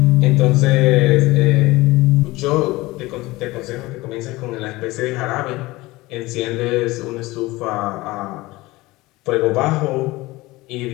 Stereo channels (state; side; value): quieter; right; 20.3 dB